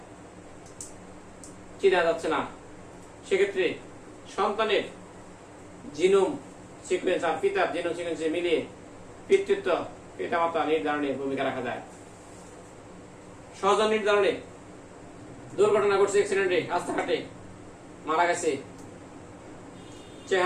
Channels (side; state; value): both; identical; correlation 1.00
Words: চেনা যাচ্ছে না, সেক্ষেত্রে সন্তানের জিনোম সিকোয়েন্স আর পিতার জিনোম সিকোয়েন্সে মিলিয়ে পিতৃত্ব পিতামাতা নির্ধারণে ভূমিকা রাখা যায়। স্বজন নির্ধারণে দুর্ঘটনা ঘটছে, অ্যাক্সিডেন্টে রাস্তাঘাটে মারা গেছে,